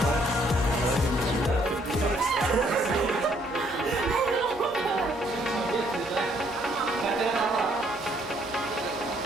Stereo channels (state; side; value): normal; both; correlation 0.67